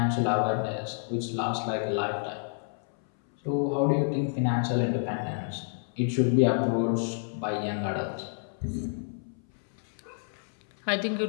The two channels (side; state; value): right; silent; 58 dB below the other